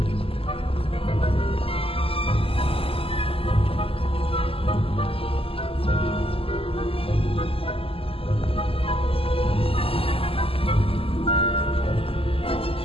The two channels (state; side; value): late; right; 0.27 ms